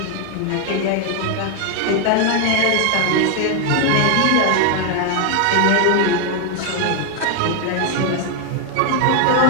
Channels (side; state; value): both; different; correlation 0.00